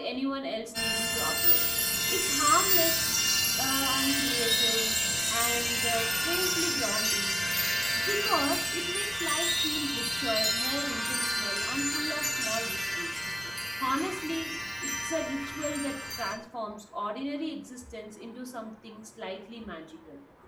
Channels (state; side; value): identical; both; correlation 1.00